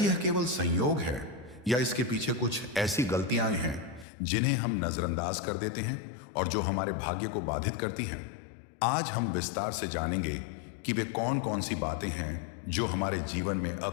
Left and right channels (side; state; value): right; drops out; at 4.0 s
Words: केवल संयोग है या इसके पीछे कुछ ऐसी गलतियां हैं जिन्हें हम नजरअंदाज कर देते हैं और जो हमारे भाग्य को बाधित करती हैं? आज हम विस्तार से जानेंगे कि वे कौन कौन सी बातें हैं जो हमारे जीवन में